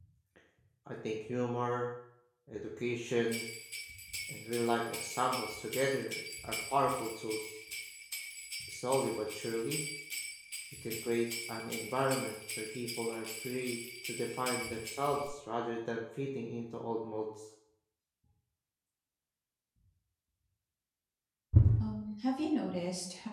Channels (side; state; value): both; identical; correlation 1.00